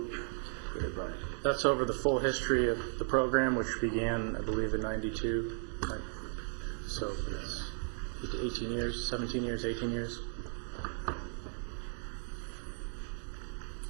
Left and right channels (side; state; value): left; silent; 54 dB below the other